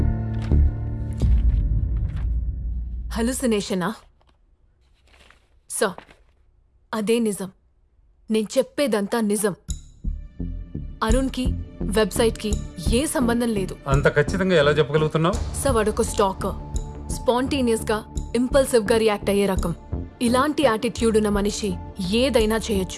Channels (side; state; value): both; identical; correlation 1.00